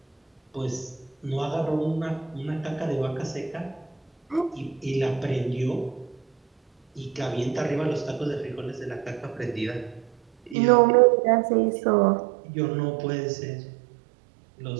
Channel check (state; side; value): drops out; left; at 10.6 s